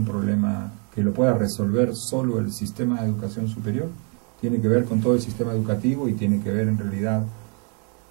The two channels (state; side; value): quieter; left; 37.6 dB